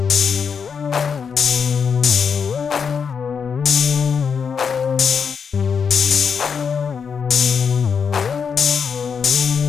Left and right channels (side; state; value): right; quieter; 6.4 dB